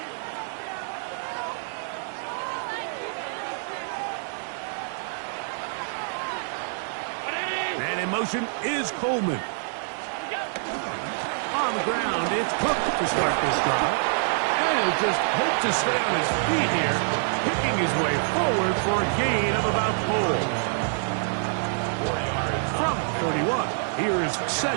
And in motion is Coleman. On the ground, it's Cook to start this drive. And he'll just hope to stay on his feet here, picking his way forward for a gain of about 4. From 31, here is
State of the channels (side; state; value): left; silent; digital silence